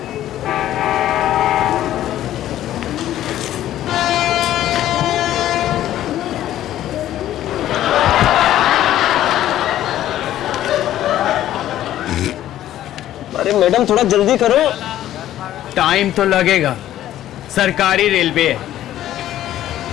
अरे मैडम, थोड़ा जल्दी करो। टाइम तो लगेगा, सरकारी रेलवे है।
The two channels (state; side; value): quieter; right; 12.8 dB